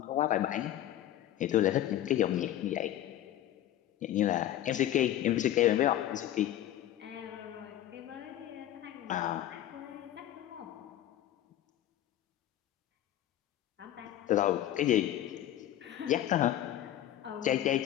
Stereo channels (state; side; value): quieter; right; 12.6 dB